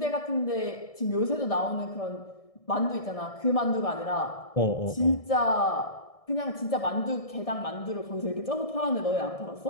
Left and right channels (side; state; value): right; late; 1.6 ms